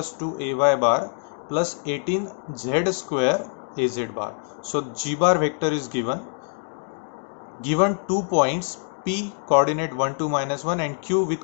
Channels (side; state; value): right; silent; 57 dB below the other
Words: 2ay bar plus 18z square az bar. So g bar vector is given 2 points p coordinate 1 2 minus 1 and q